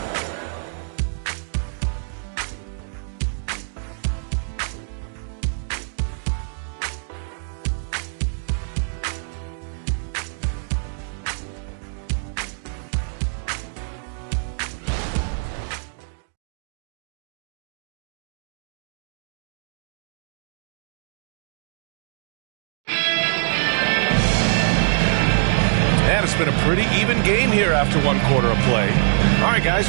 And it's been a pretty even game here after 1 quarter of play. All right, guys,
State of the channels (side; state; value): left; silent; digital silence